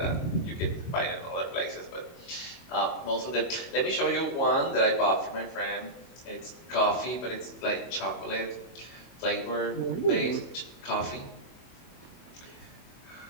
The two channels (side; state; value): right; late; 24 ms